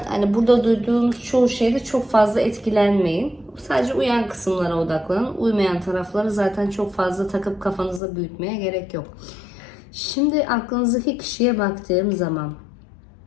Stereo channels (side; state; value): right; drops out; at 8.0 s